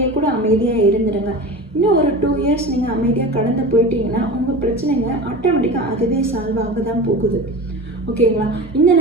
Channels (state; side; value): normal; both; correlation 0.31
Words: கூட அமைதியாக இருந்துடுங்க. இன்னும் ஒரு 2 இயர்ஸ் நீங்கள் அமைதியாக கடந்து போயிட்டீங்கன்னா உங்கள் பிரச்சனைங்க ஆட்டோமேட்டிக்காக அதுவே சால்வ் ஆக தான் போகுது. ஓகேங்களா? இந்த